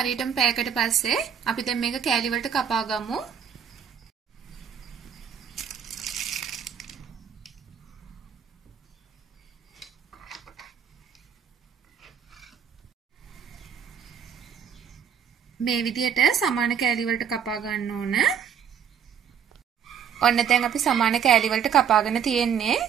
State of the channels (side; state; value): left; quieter; 7.9 dB